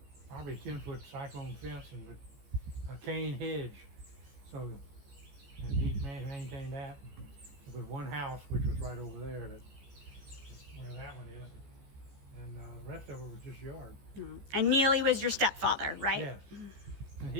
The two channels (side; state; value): left; late; 14 ms